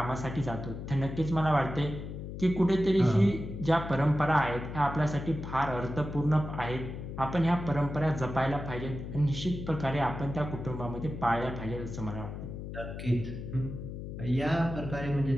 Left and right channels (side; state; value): left; noise; hum, 8 dB below the sound